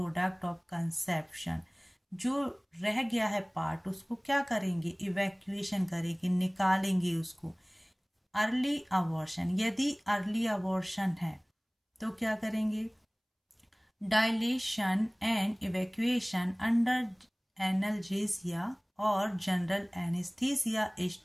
of conception. जो रह गया है पार्ट उसको क्या करेंगे, इवैक्यूएशन करेंगे, निकालेंगे उसको। अर्ली अबॉर्शन, यदि अर्ली अबॉर्शन है तो क्या करेंगे, dilatation and evacuation under analgesia और general anaesthesia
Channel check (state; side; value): identical; both; correlation 1.00